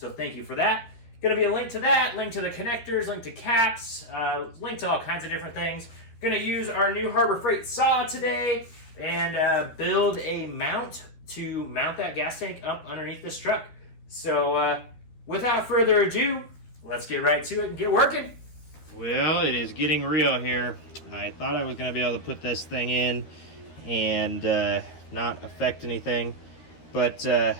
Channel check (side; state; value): right; late; 13 ms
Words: thank you for that. Going to be a link to that, link to the connectors, link to caps, link to all kinds of different things. Going to use our new Harbor Freight saw today and build a mount to mount that gas tank up underneath this truck. So without further ado, let's get right to it and get working. Well, it is getting real here. I thought I was going to be able to put this thing in and not affect anything, but